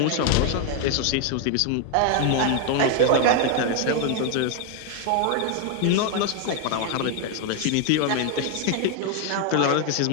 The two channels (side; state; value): both; different; correlation 0.01